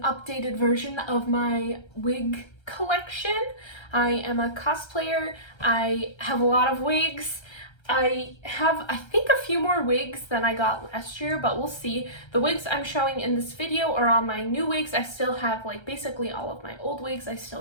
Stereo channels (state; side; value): late; right; 1.3 ms